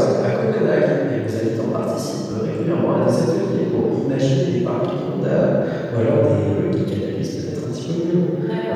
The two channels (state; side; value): identical; both; correlation 1.00